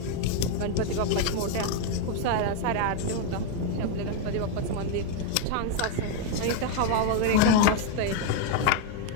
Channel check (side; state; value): both; different; correlation 0.01